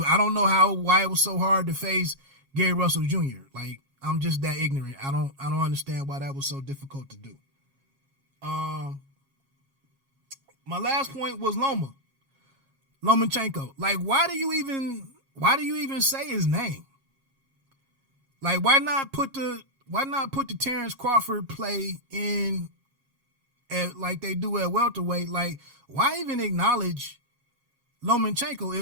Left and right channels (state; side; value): late; left; 7.3 ms